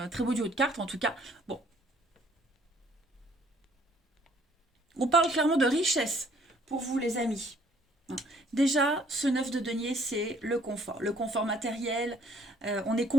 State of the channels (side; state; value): both; normal; correlation 0.61